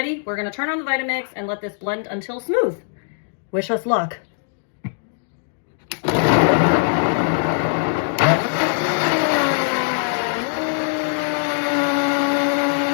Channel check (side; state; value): right; silent; digital silence